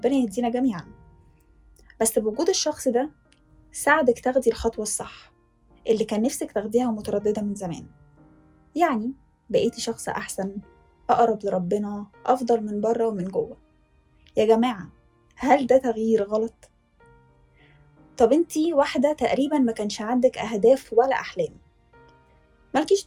يهدينا جميعا. بس بوجود الشخص ده ساعدك تاخدي الخطوة الصح اللي كان نفسك تاخديها ومترددة من زمان. يعني بقيتي شخص أحسن، أقرب لربنا، أفضل من بره ومن جوه. يا جماعة، هل ده تغيير غلط؟ طب انتي واحدة تقريبا ما كانش عندك أهداف ولا أحلام، مالكيش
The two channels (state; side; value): identical; both; correlation 1.00